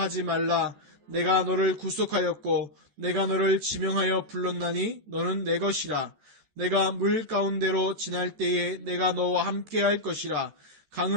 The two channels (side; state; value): left; late; 14 ms